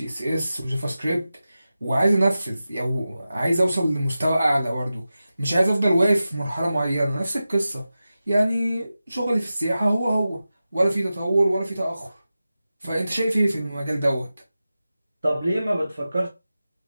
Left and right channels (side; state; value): both; inverted; correlation -0.94